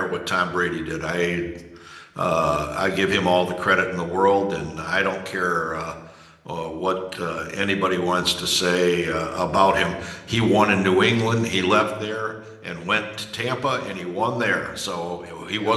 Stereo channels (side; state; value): both; identical; correlation 1.00